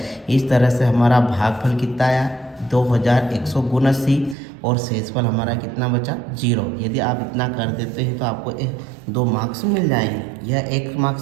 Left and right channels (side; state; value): left; drops out; at 4.4 s